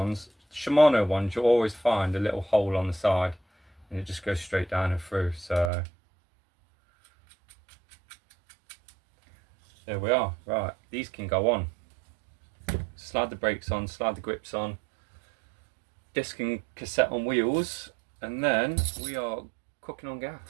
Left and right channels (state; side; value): drops out; left; at 5.7 s